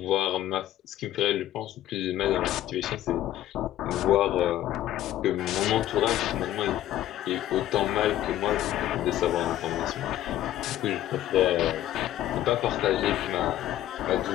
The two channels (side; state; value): right; quieter; 13.1 dB